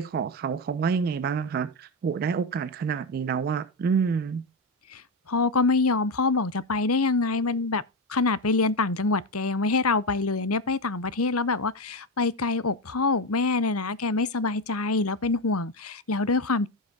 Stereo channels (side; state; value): both; normal; correlation 0.13